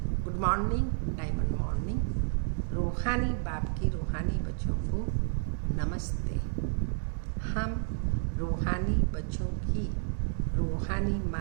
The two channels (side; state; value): left; silent; digital silence